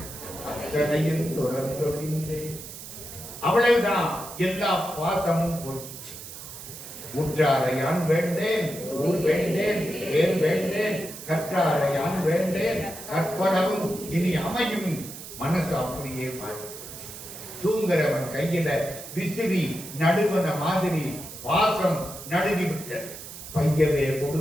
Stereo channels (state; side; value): noise; right; hiss, 12 dB below the sound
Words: அத்தனையும் தொடர்ந்தொழிந்தே. அவ்வளவுதான், எல்லா பாசமும் போயிடுச்சு. உற்றாரையான் வேண்டேன், ஊர் வேண்டேன், வேர் வேண்டேன், கற்றாரையான் வேண்டேன் கற்பனவும் இனி அமையும். மனசு அப்படியே மாறி தூங்குறவன் கையில விசிறி நடுவன மாதிரி வாசம் நடுவி விட்டது. பையவே